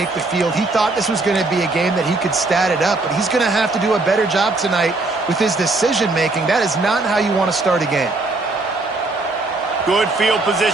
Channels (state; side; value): quieter; left; 3.2 dB